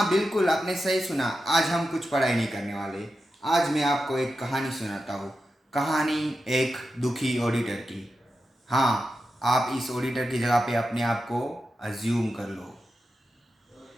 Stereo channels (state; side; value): normal; both; correlation 0.90